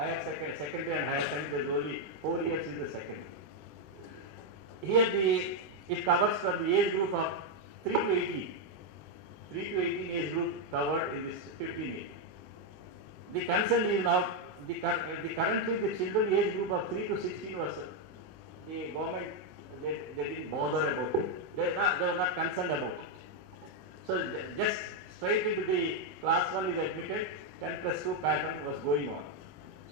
and higher secondary, there is only 4 years is the secondary. Here it covers from the age group of 3 to 18. 3 to 18 age group covered in this 15 years. The concern is now, currently the children age group of 3 to 16 was, the government, they didn't bother about it. They were not concerned about it. So just straight into the class 1 is admitted, 10+2 pattern was going on.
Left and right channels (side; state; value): left; late; 4.8 ms